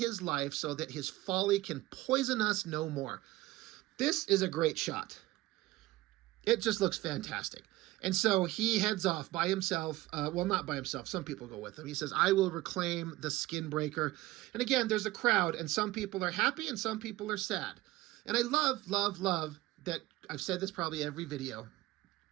life so that his folly can poison us no more. This is a great shot. It just looks fantastic. And so he heads off by himself. Well, not by himself. Some people go with him. He says, I will reclaim the Skinbreaker. And again, there's a crowd, and some people are happy and some people are sad. And I love, love, love that, I've said this probably every video,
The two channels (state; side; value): quieter; left; 18.2 dB